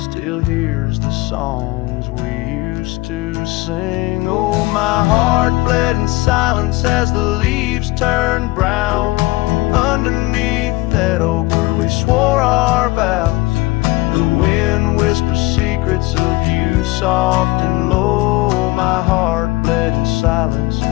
hears the songs we used to sing. Oh, my heart bled in silence as the leaves turned brown underneath that oak where we swore our vows. The wind whispers secrets of you soft and low. My heart bled in silence,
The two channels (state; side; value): quieter; right; 20.5 dB